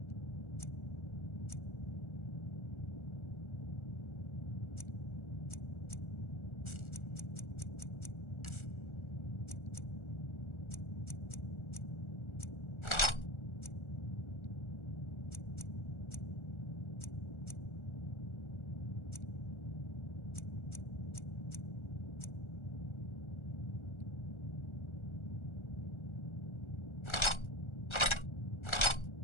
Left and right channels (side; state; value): right; late; 1.4 ms